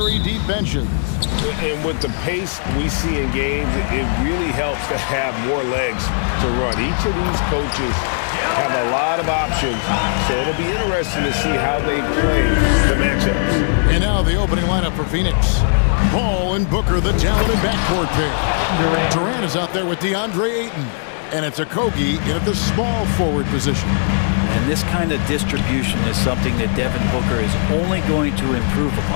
deep benches. And with the pace we see in games, it really helps to have more legs to run. Each of these coaches have a lot of options, so it'll be interesting to see how they play the matchups. And now the opening lineup for Phoenix. Paul and Booker, the talented backcourt pair. Durant is out there with DeAndre Ayton. And it's Okogie in at the small forward position. And this kind of distribution is something that Devin Booker is only going to improve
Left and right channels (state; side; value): silent; right; digital silence